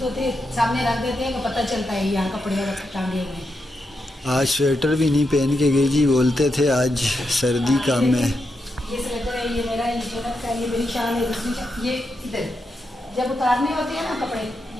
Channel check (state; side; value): normal; both; correlation 0.85